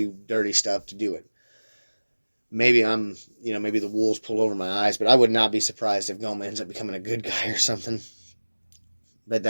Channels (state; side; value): inverted; both; correlation -1.00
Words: dirty stuff to do it. Maybe maybe the wool's pulled over my eyes, but I would not be surprised if Goma ends up becoming a good guy or something. But